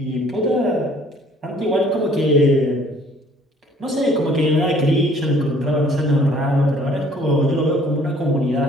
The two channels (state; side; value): normal; both; correlation 0.57